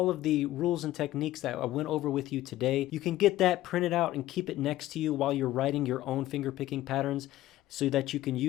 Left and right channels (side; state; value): right; quieter; 15.2 dB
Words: of the rules and techniques that I went over with you today. You can get that printed out and keep it next to you while you're writing your own finger picking patterns so that you can